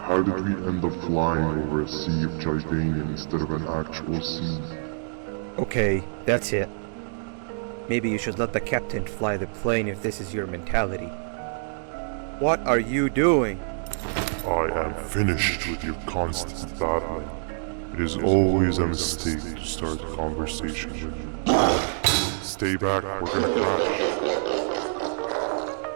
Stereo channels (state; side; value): silent; left; digital silence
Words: did we end up flying over a sea of Jardanian instead of an actual sea? Okay, that's it. Maybe you should let the captain fly the plane if this is your mentality. What are you doing? I am finished with your constant battling. It is always a mistake to start a conversation with you. Stay back, we're gonna crash.